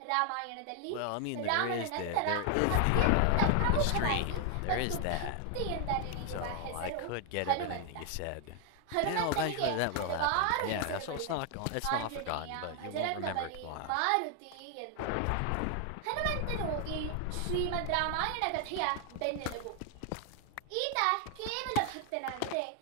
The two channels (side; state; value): both; different; correlation 0.00